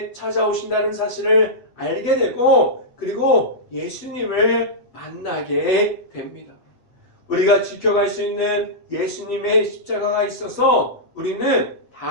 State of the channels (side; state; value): right; late; 8.0 ms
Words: 찾아오신다는 사실을 알게 되고 그리고 예수님을 만나게 됩니다. 우리가 지켜갈 수 있는 예수님의 십자가가 있어서 우리는